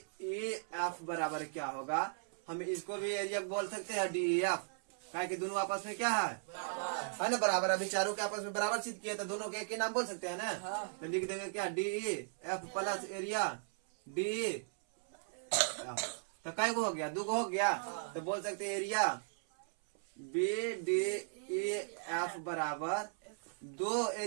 E F बराबर क्या होगा, हम इसको भी एरिया बोल सकते हैं डी ई एफ, कि दोनों आपस में क्या है ना बराबर, अभी चारों के आपस में बराबर सिद्ध किया तो दोनों के एक ही नाम बोल सकते हैं ना, तो लिख देंगे क्या, D E F plus area D E, तो कई को हो गया, 2 को हो गया, तो बोल सकते हैं area B D E F बराबर 2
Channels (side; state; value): left; silent; 53 dB below the other